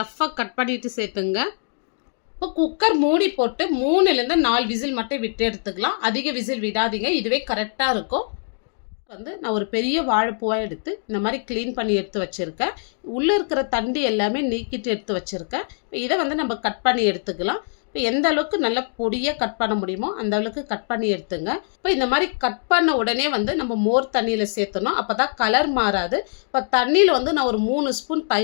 ரஃப்பாக கட் பண்ணிவிட்டு சேர்த்துங்க. இப்போ குக்கர் மூடி போட்டு 3லேருந்து 4 விசில் மட்டும் விட்டு எடுத்துக்கலாம். அதிக விசில் விடாதீங்க, இதுவே கரெக்டாக இருக்கும். வந்து நான் ஒரு பெரிய வாழைப்பூவாக எடுத்து இந்த மாதிரி க்ளீன் பண்ணி எடுத்து வச்சுருக்கேன். உள்ளே இருக்கிற தண்டு எல்லாமே நீக்கிட்டு எடுத்து வச்சுருக்கேன். இதை வந்து நம்ம கட் பண்ணி எடுத்துக்கலாம். இப்போ எந்த அளவுக்கு நல்லா பொடியாக கட் பண்ண முடியுமோ அந்த அளவுக்கு கட் பண்ணி எடுத்துங்க. இப்போ இந்த மாதிரி கட் பண்ண உடனே வந்து நம்ம மோர் தண்ணியில் சேர்த்தணும், அப்போ தான் கலர் மாறாது. இப்போ தண்ணியில் வந்து நான் ஒரு 3 ஸ்பூன்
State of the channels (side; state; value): right; silent; digital silence